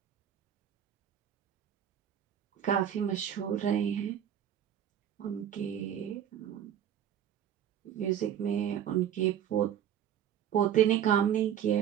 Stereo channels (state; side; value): quieter; left; 9.7 dB